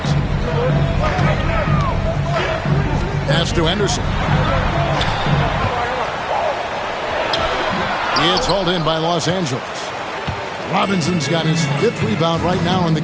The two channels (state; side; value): identical; both; correlation 1.00